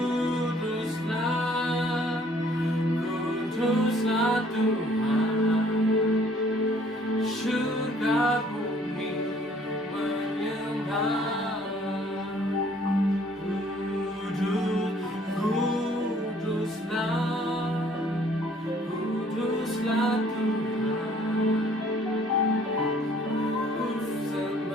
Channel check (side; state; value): both; normal; correlation 0.59